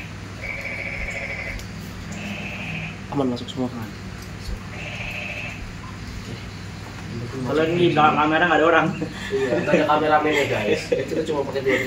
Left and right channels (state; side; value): identical; both; correlation 1.00